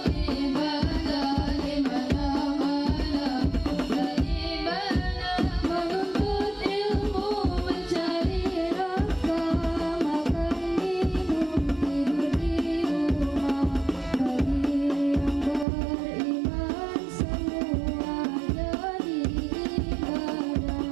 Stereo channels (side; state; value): left; drops out; at 15.7 s